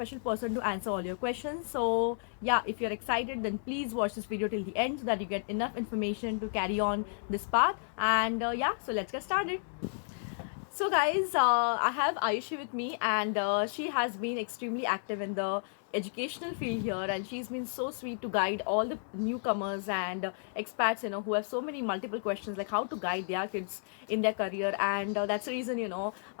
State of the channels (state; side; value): silent; right; digital silence